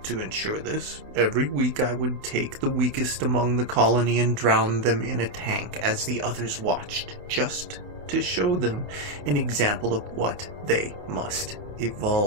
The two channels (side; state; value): left; late; 28 ms